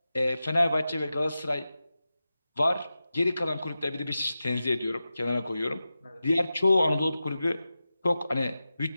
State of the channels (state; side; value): inverted; both; correlation -0.93